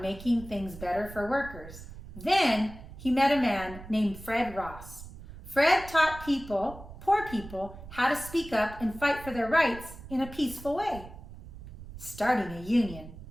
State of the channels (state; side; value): noise; right; rumble, 15 dB below the sound